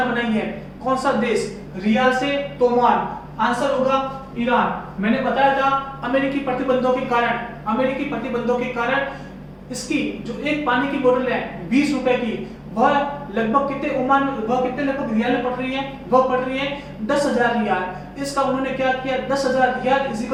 बनाई है? कौन सा देश? रियाल से तोमान। आंसर होगा ईरान। मैंने बताया था अमेरिकी प्रतिबंधों के कारण इसकी जो एक पानी की बोतल है 20 रुपए की, वह लगभग कितने ओमान, वह कितने लगभग रियाल में पड़ रही है, वह पड़ रही है 10,000 रियाल। इसका उन्होंने क्या किया, 10,000 riyal is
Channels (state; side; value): identical; both; correlation 1.00